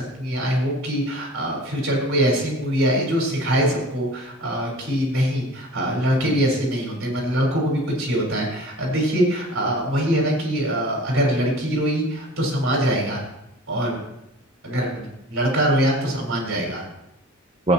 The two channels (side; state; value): both; normal; correlation 0.42